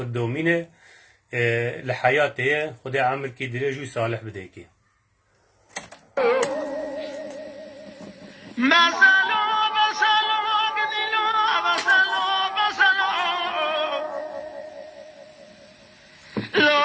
دومینه لحیاته خدا عمر کی درجو صالح بده کی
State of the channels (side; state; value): both; identical; correlation 1.00